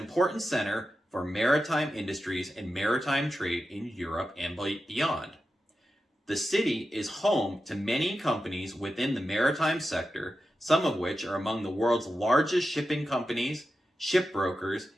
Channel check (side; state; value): both; normal; correlation 0.91